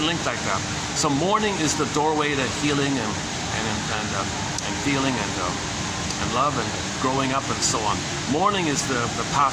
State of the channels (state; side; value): identical; both; correlation 1.00